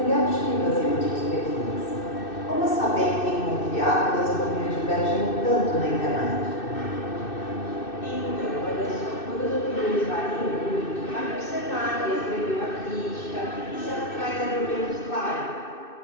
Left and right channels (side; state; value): right; late; 2.6 ms